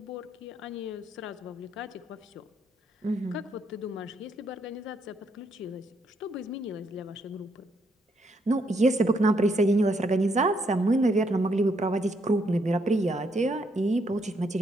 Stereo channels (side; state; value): both; normal; correlation 0.74